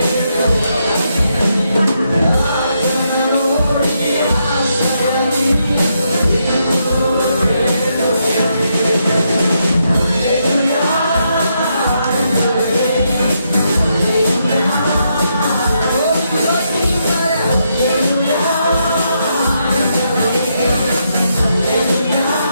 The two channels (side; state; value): both; inverted; correlation -0.80